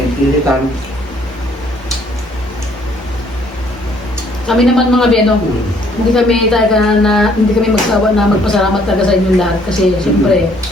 iritan. Kami naman mga beno, hindi kami talaga hindi kami magsawa na magpasalamat talaga sa inyong lahat kasi siyempre,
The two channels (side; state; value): both; normal; correlation 0.63